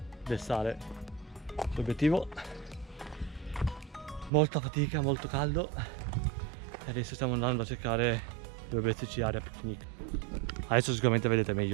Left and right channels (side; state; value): left; drops out; at 4.3 s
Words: del sale sull'obiettivo. Molta fatica, molto caldo e adesso stiamo andando a cercare dove metterci area picnic. Adesso sicuramente vedete